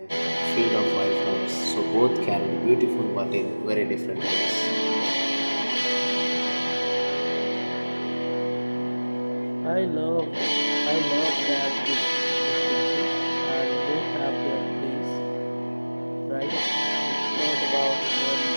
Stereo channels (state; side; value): inverted; both; correlation -1.00